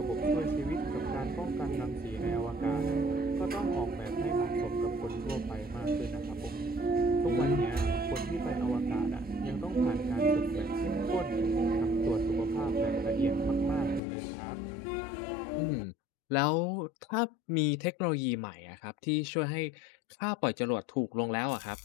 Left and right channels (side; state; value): right; drops out; at 14.0 s